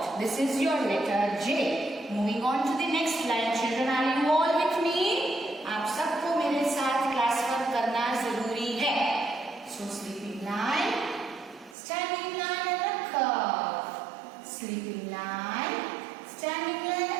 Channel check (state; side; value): drops out; left; at 11.8 s